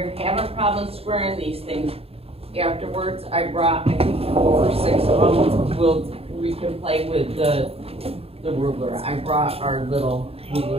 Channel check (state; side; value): late; left; 0.28 ms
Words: having problems squaring these things, afterwards I brought, I think 4 or 6 of them. We can play with the ruler. I brought our little